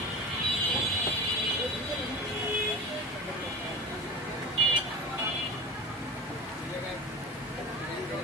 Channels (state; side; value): normal; both; correlation 0.31